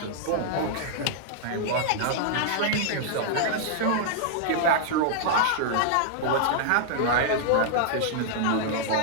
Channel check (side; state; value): both; different; correlation -0.01